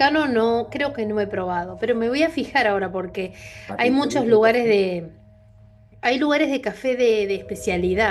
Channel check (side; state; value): both; identical; correlation 1.00